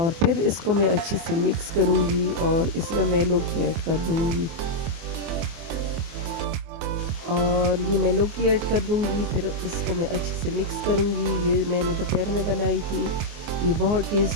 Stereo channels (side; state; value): left; late; 24 ms